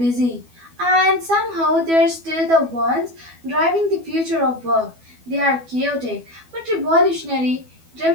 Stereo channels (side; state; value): left; late; 12 ms